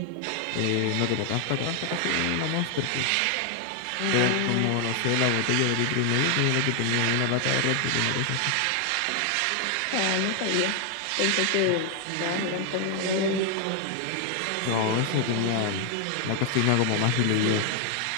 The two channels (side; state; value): both; different; correlation 0.00